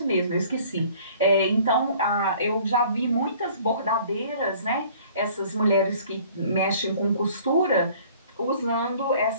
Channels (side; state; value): both; inverted; correlation -0.53